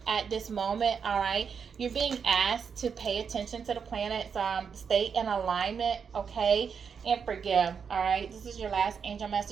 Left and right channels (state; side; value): quieter; left; 6.5 dB